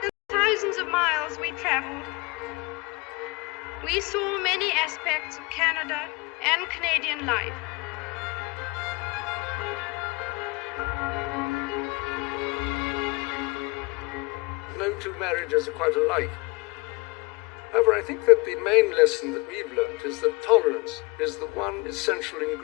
The thousands of miles we traveled, we saw many aspects of Canada and Canadian life. No two marriages are quite alike. However, I think that the main lesson that we've learnt is that tolerance is the one essential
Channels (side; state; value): right; quieter; 26.1 dB